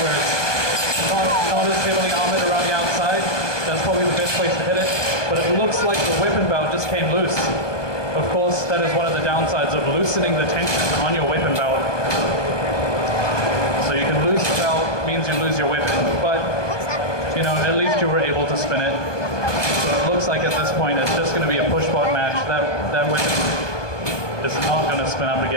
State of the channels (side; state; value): right; late; 1.2 ms